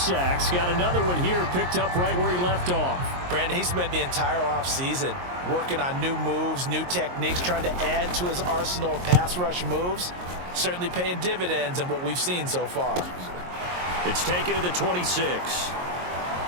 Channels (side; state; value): left; late; 22 ms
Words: Got another one here, picked up right where he left off. Brandon, he spent the entire offseason working on new moves, new techniques, trying to add to his arsenal of pass rush moves. Certainly paying dividends in what we've seen so far. It's taken to the 26.